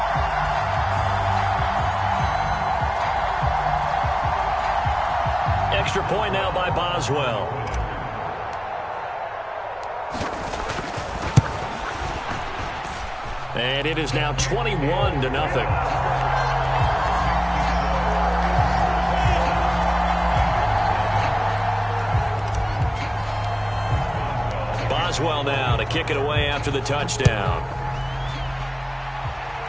Extra point now by Boswell. And it is now 21-0. Boswell now to kick it away after the touchdown.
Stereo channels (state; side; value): identical; both; correlation 1.00